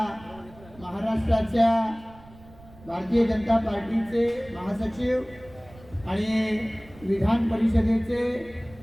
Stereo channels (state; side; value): noise; right; rumble, 22 dB below the sound